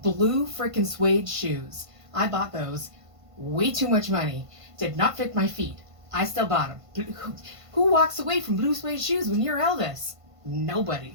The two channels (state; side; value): late; left; 1.5 ms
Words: Blue freaking suede shoes. I bought those. Way too much money. Did not fit my feet. I still bought them. Who walks away from blue suede shoes when you're Elvis?